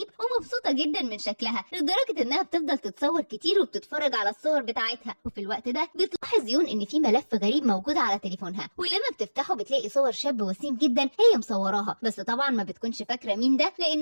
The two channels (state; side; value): inverted; both; correlation -1.00